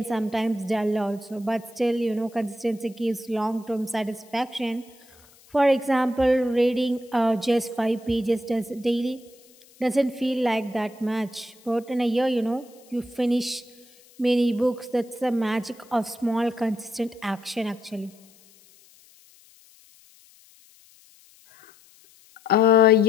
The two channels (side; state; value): left; noise; hiss, 27 dB below the sound